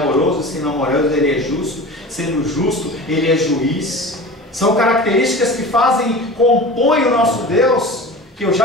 sendo amoroso, ele é justo. Sendo justo, ele é juiz. São características que compõem o nosso Deus, que eu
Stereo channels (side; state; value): both; normal; correlation 0.35